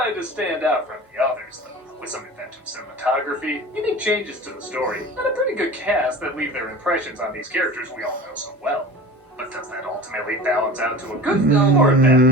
to stand out from the others, though, with some inventive cinematography, unique changes to the story, and a pretty good cast that leave their impressions on these characters we all know so well. But does that ultimately balance out to a good film or a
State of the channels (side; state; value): both; normal; correlation 0.37